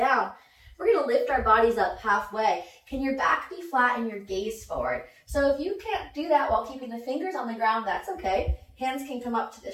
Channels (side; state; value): both; identical; correlation 1.00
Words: We're going to lift our bodies up halfway. Can your back be flat and your gaze forward? So if you can't do that while keeping the fingers on the ground, that's okay. Hands can come up to the